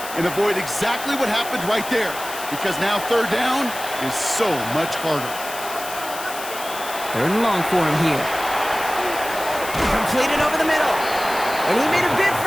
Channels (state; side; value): noise; left; hiss, 11 dB below the sound